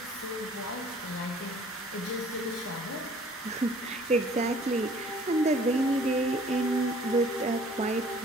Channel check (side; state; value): both; normal; correlation 0.54